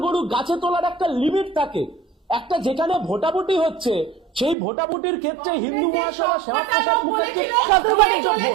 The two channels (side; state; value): left; drops out; at 4.5 s